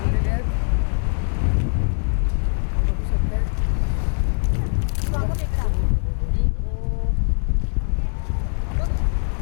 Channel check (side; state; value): right; silent; 64 dB below the other